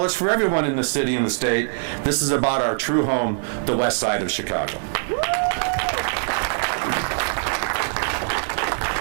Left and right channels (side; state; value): left; silent; digital silence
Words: it's for everyone in the city and the state, this is about our true home, the west side of Chicago.